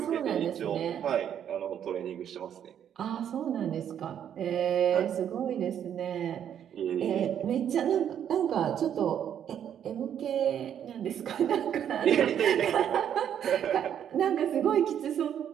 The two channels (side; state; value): left; quieter; 9.4 dB